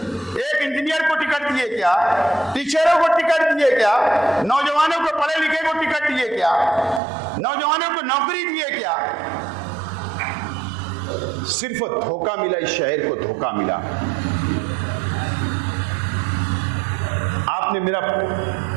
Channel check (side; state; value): left; drops out; at 7.0 s